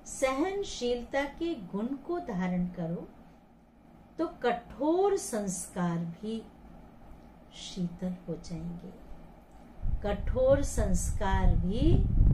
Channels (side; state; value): both; identical; correlation 1.00